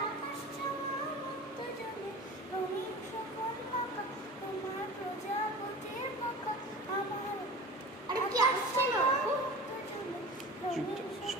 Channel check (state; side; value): normal; both; correlation 0.36